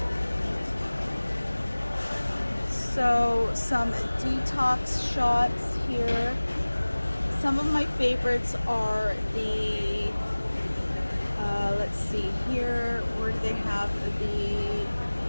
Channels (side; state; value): both; inverted; correlation -1.00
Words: So some detox shots here. Some of my favorites are the, let's see here, where do they have the,